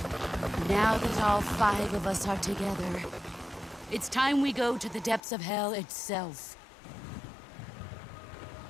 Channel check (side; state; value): right; drops out; at 5.2 s